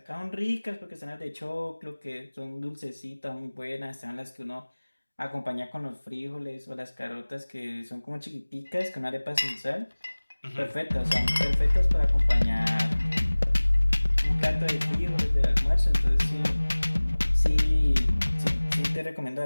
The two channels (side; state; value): both; inverted; correlation -1.00